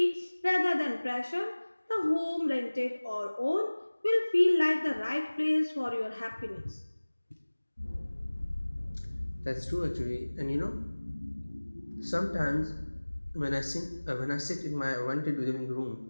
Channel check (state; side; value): inverted; both; correlation -1.00